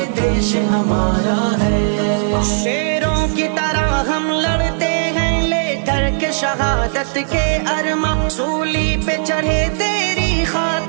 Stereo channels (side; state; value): left; silent; digital silence